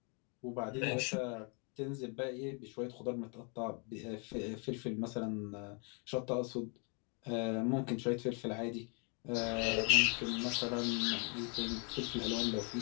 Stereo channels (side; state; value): right; quieter; 36.8 dB